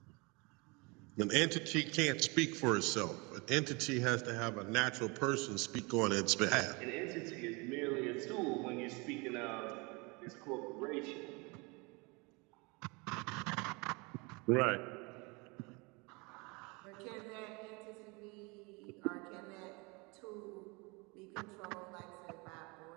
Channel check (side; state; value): left; quieter; 28.0 dB